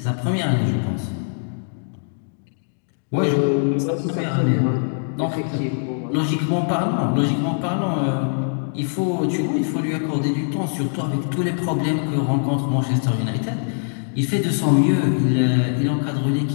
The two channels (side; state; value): right; silent; digital silence